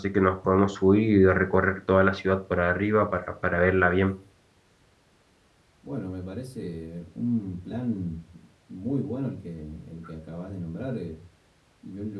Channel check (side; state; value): both; identical; correlation 1.00